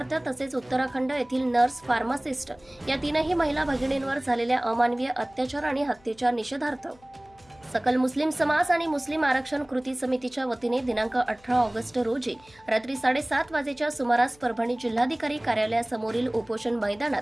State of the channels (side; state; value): left; noise; hum, 29 dB below the sound